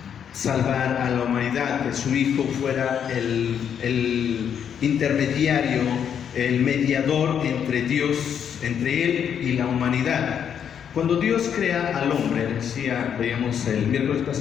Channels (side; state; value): right; quieter; 8.3 dB